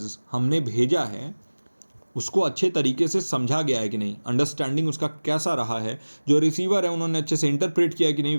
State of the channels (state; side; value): inverted; both; correlation -1.00